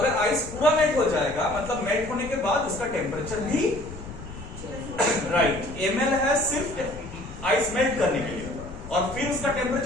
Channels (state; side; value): noise; left; rumble, 14 dB below the sound